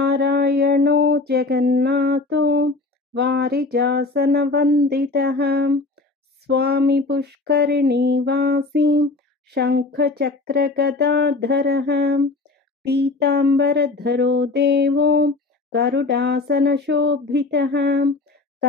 जगन्नाथो वारिजासनवन्दितः स्वामी पुष्करिणीवासी शङ्खचक्रगदाधरः पीताम्बरधरो देवो गरुडासनशोभितः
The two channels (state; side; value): quieter; right; 3.4 dB